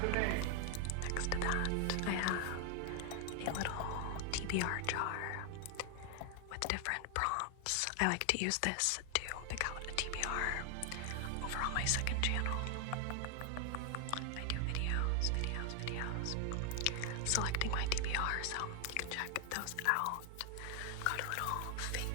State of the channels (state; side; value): different; both; correlation 0.00